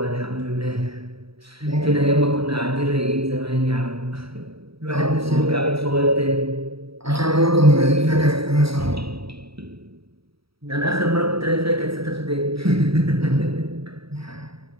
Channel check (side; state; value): left; late; 0.76 ms